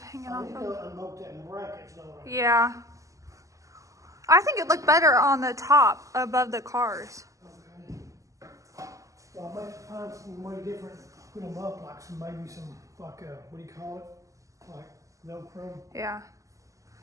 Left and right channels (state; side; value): late; left; 0.16 ms